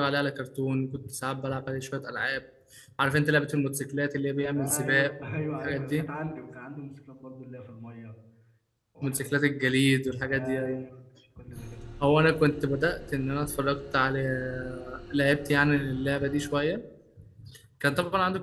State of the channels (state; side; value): identical; both; correlation 1.00